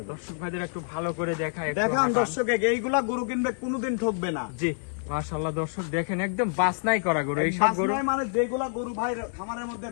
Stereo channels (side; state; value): right; silent; 60 dB below the other